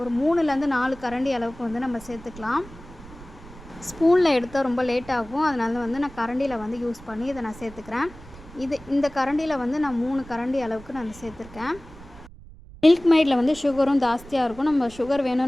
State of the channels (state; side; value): noise; right; rumble, 18 dB below the sound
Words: 3லேருந்து 4 கரண்டி அளவுக்கு வந்து நம்ம சேர்த்துக்கலாம். ஸ்பூனில் எடுத்தால் ரொம்ப லேட் ஆகும். அதனால வந்து நான் கரண்டியில் வந்து யூஸ் பண்ணி இதை நான் சேர்த்துக்கிறேன். இந்த கரண்டியில் வந்து நான் 3 கரண்டி அளவுக்கு நான் சேர்த்துருக்கேன். மில்க் மைடில் வந்து சுகரும் ஜாஸ்தியாக இருக்கும். நம்ம சுகர்